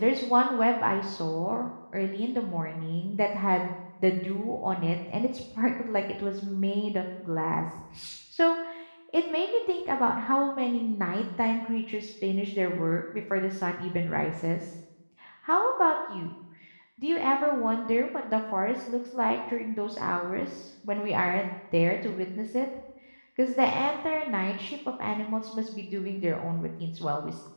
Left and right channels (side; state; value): both; inverted; correlation -1.00